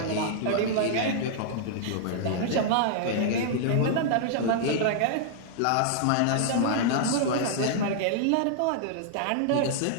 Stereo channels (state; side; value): different; both; correlation -0.01